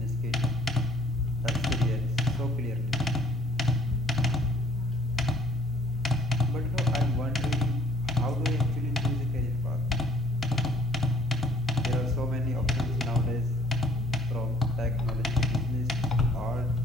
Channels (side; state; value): both; normal; correlation 0.58